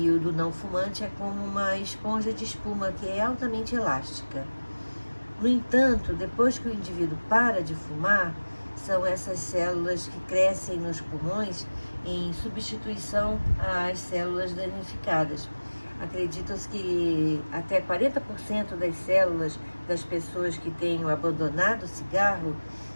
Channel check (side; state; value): both; inverted; correlation -1.00